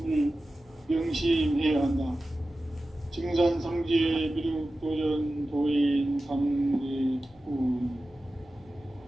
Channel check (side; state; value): both; normal; correlation 0.94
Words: 명심해야 한다. 증산상제 미륵도전 도인 강대훈.